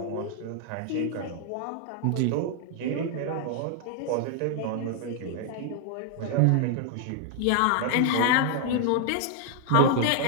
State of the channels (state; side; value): different; both; correlation 0.00